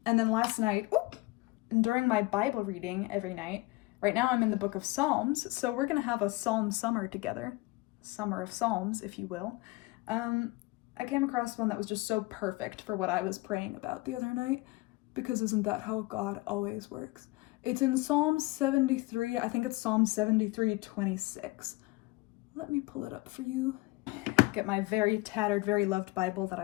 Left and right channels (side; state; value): right; quieter; 22.0 dB